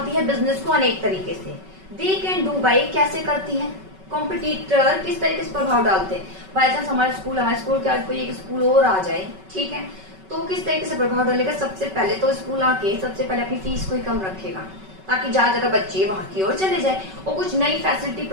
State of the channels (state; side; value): late; left; 5.3 ms